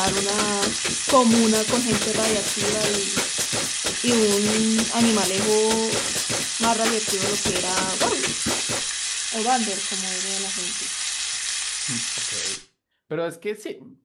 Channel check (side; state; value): both; identical; correlation 1.00